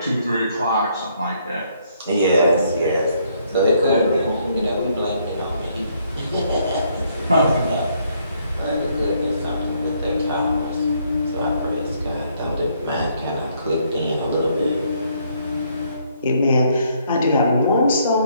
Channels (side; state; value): both; inverted; correlation -0.69